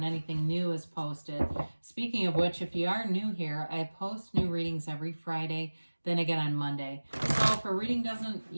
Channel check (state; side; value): inverted; both; correlation -1.00